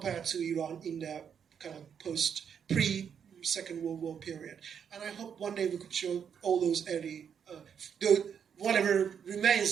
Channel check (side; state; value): left; quieter; 7.6 dB